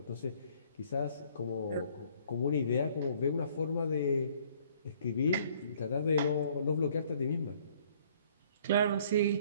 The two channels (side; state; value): both; inverted; correlation -0.60